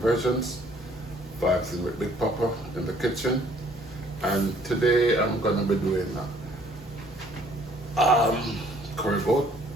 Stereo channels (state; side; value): normal; both; correlation 0.60